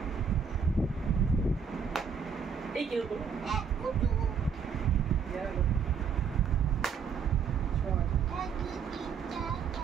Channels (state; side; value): quieter; left; 6.5 dB